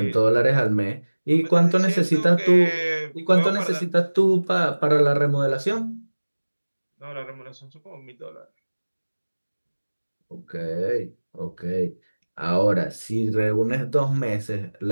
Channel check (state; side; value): inverted; both; correlation -1.00